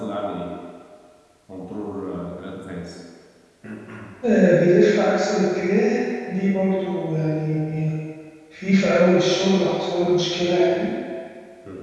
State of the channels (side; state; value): both; identical; correlation 1.00